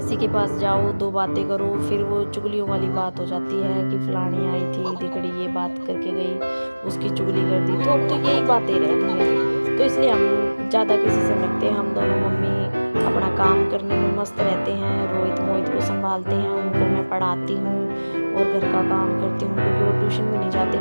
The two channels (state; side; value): inverted; both; correlation -1.00